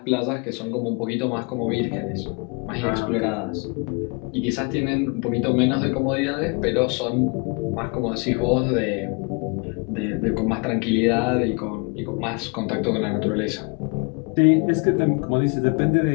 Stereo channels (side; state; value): right; quieter; 33.0 dB